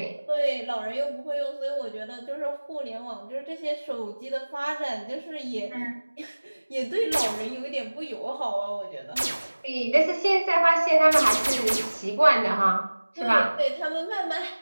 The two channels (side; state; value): both; inverted; correlation -1.00